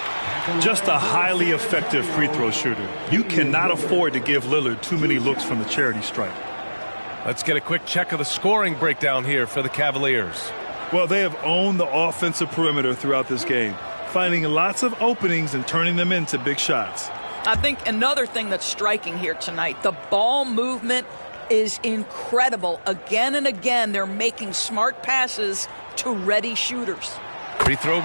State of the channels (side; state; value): both; inverted; correlation -1.00